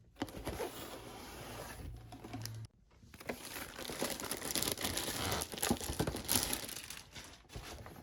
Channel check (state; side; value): identical; both; correlation 1.00